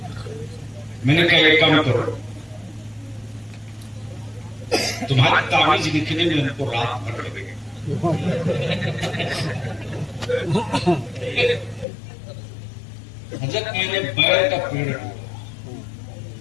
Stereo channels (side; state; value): right; drops out; at 11.9 s